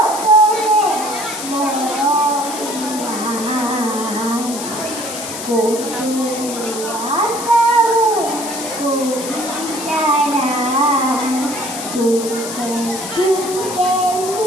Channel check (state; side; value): noise; left; hiss, 8 dB below the sound